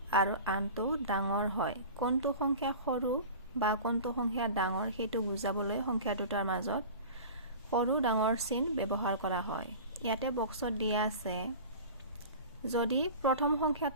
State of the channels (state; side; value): inverted; both; correlation -0.36